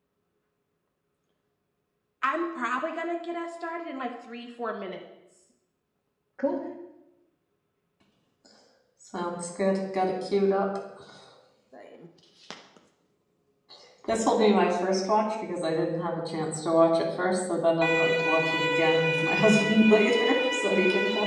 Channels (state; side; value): identical; both; correlation 1.00